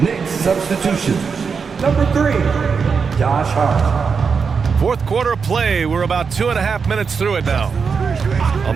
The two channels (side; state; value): left; quieter; 5.6 dB